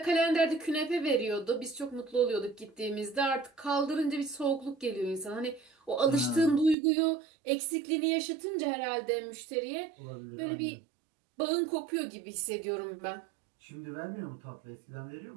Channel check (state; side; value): drops out; left; at 6.8 s